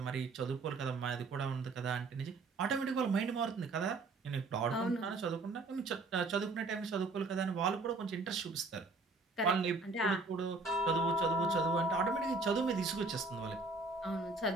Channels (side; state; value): left; quieter; 3.5 dB